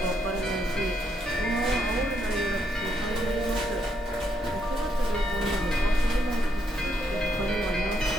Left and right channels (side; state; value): both; normal; correlation 0.76